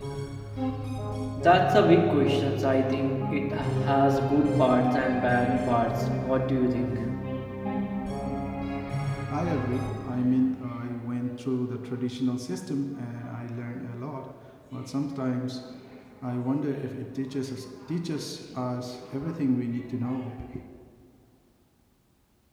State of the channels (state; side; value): identical; both; correlation 1.00